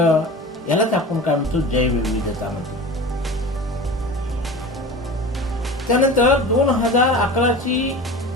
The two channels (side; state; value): both; normal; correlation 0.35